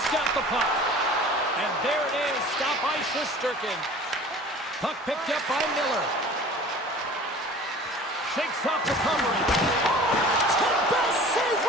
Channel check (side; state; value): both; normal; correlation 0.44